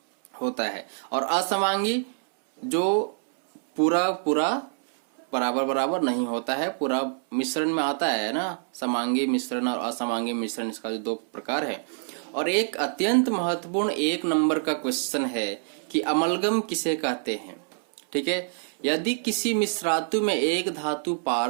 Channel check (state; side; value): silent; left; 61 dB below the other